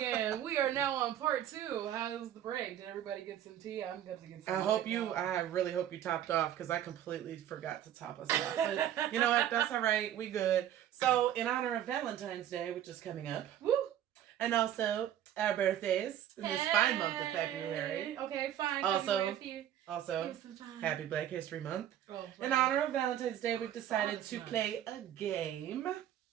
We are now on part 2. How's the break? Did everybody get some tea? I'm going to get some. I really hope you topped off because I completely forgot to top us off. But you know what? That's all right. We good. So, in honor of Valentine's Day, which is coming up, woo, and also our birthdays in this fine month of February. Okay, fine. Also, Happy Black History Month. Oh, in honor of Valentine's Day, we've decided to play a game.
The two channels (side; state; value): left; quieter; 11.1 dB